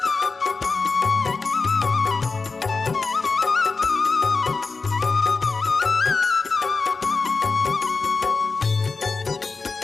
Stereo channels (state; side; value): quieter; right; 4.3 dB